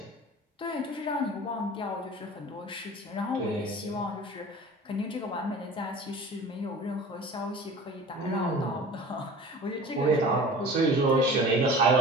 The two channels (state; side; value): normal; both; correlation 0.40